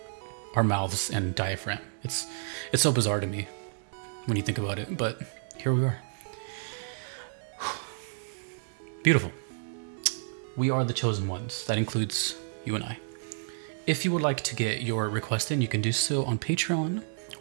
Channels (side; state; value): left; silent; digital silence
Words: our mouths and diaphragm. It's so bizarre to me when you think about it, but here we are. Beautiful. We are the chosen ones. That includes you and I. If you would like to get your request in, you can do so on Patreon,